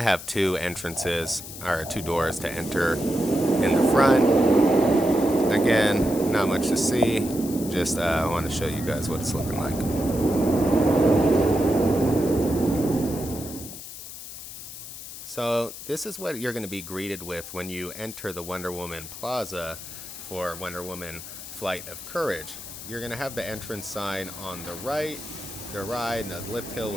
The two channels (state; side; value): noise; left; hiss, 11 dB below the sound